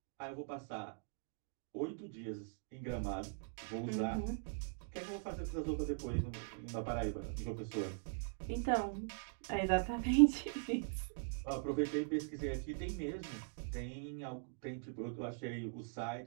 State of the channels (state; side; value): silent; left; digital silence